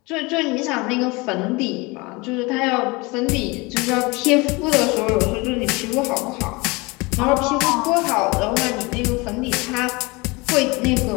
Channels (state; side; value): quieter; right; 25.1 dB